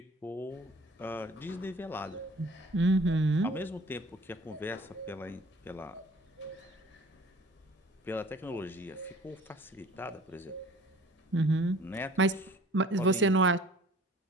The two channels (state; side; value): normal; both; correlation 0.50